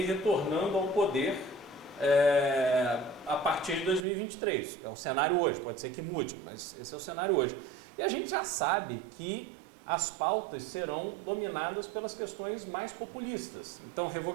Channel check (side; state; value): left; drops out; at 4.0 s